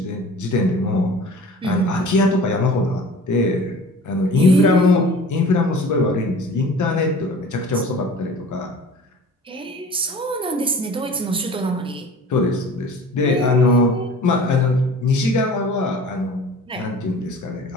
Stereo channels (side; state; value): both; normal; correlation 0.42